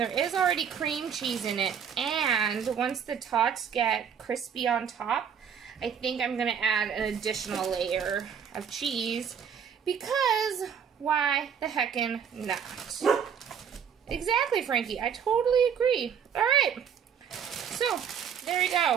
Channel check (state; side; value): quieter; left; 7.5 dB